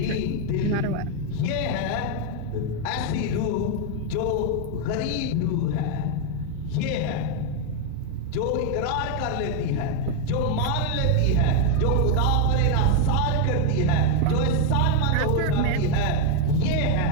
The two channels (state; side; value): different; both; correlation 0.01